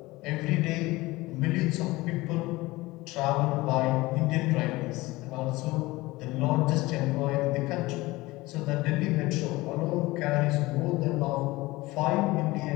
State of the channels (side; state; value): right; quieter; 20.3 dB